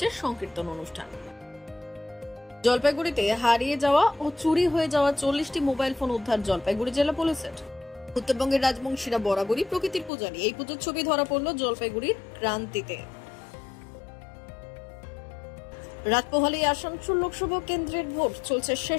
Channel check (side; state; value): right; drops out; at 10.1 s